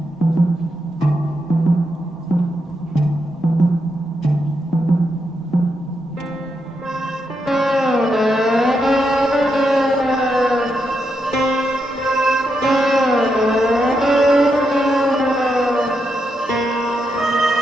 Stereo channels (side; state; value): both; normal; correlation 0.83